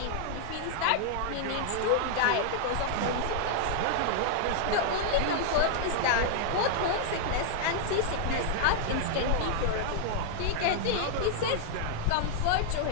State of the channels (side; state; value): both; different; correlation -0.01